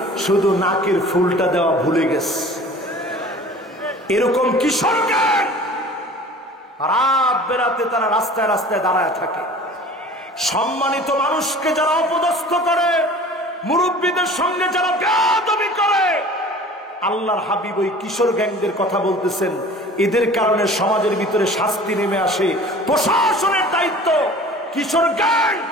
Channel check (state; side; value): normal; both; correlation 0.44